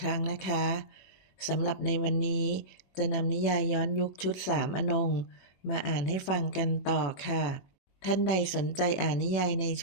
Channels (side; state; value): right; late; 21 ms